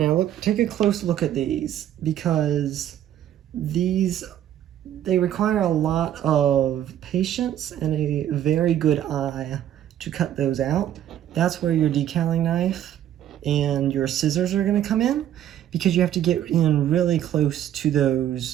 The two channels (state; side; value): quieter; left; 11.2 dB